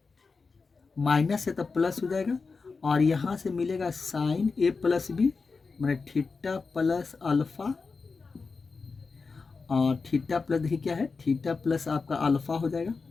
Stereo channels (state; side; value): quieter; right; 4.5 dB